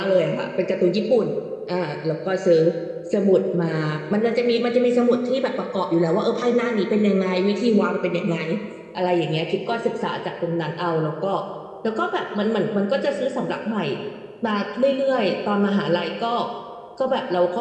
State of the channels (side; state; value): both; identical; correlation 1.00